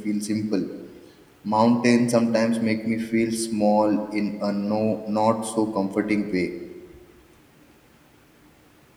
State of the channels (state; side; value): identical; both; correlation 1.00